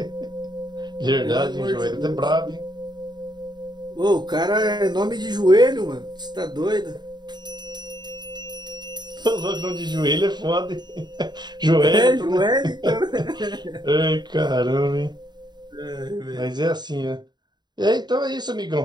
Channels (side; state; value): left; late; 0.21 ms